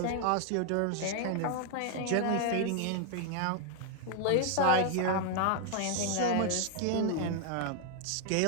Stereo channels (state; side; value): different; both; correlation 0.00